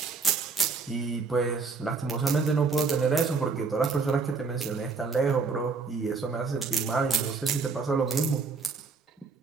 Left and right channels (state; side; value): quieter; left; 4.6 dB